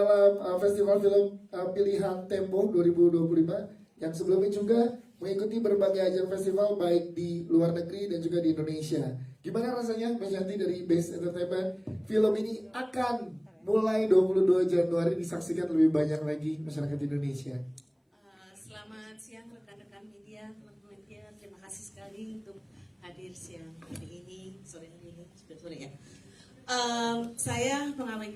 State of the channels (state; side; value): identical; both; correlation 1.00